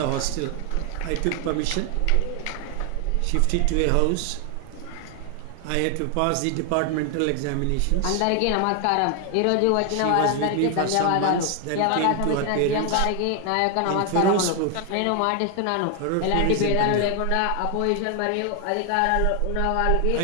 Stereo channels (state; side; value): different; both; correlation 0.00